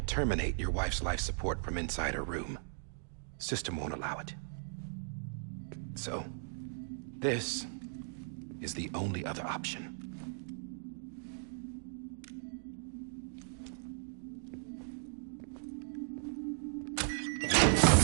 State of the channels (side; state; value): left; silent; digital silence